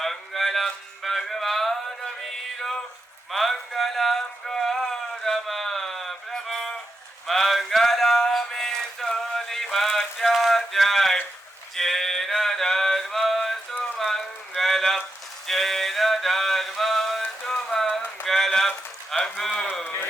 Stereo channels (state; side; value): normal; both; correlation 0.86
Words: भगवान वीरो मंगलम गौतम प्रभु मंगलमे सोलिभाष्याध्याय जैन धर्मस्तु मंगलम जैन धर्मस्तु मंगलम